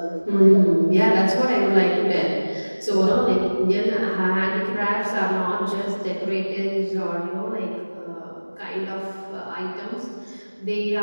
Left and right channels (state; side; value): inverted; both; correlation -1.00